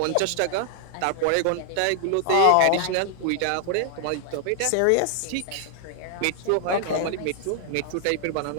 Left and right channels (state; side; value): different; both; correlation -0.01